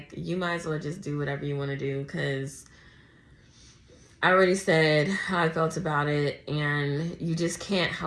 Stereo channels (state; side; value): identical; both; correlation 1.00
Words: you might as well just do whatever you want to do, because I already said how I felt about it, and you just can't